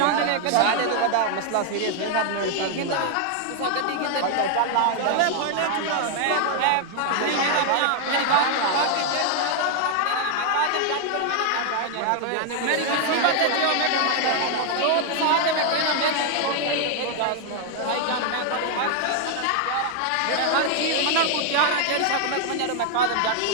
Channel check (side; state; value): both; different; correlation 0.00